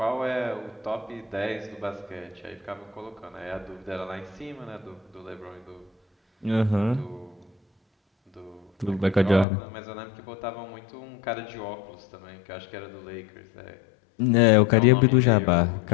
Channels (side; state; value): right; drops out; at 9.5 s